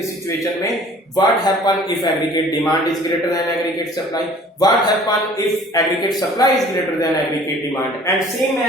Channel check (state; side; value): normal; both; correlation 0.50